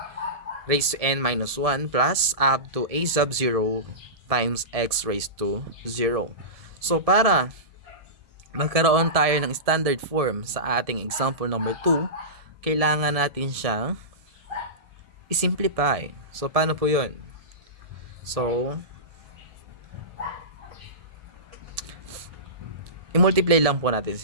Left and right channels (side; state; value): left; late; 1.7 ms